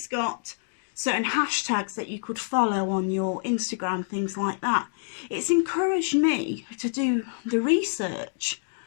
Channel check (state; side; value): silent; right; digital silence